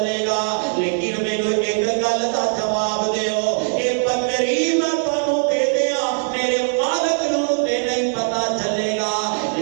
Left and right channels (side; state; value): left; silent; digital silence